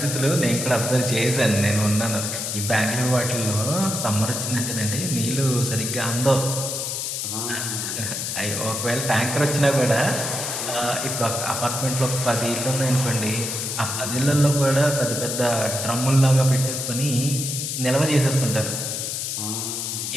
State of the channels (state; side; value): noise; left; hiss, 3 dB below the sound